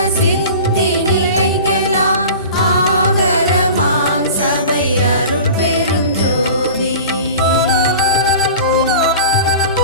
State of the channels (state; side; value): inverted; both; correlation -0.37